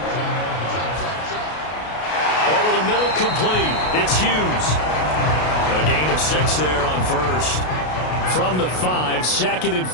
Over the middle, complete. It's Hughes. A gain of 6 there on 1st. From the 5, 2nd and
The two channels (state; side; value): late; right; 33 ms